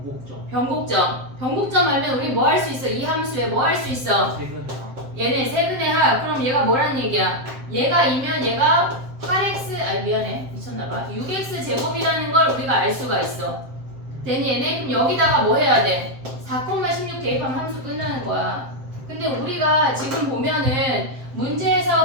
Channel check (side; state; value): left; late; 7.6 ms